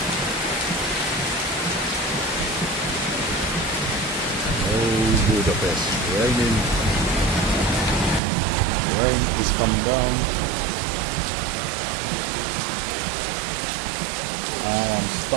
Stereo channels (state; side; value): drops out; left; at 8.2 s